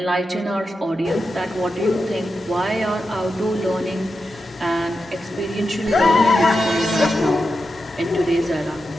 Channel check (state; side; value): normal; both; correlation 0.89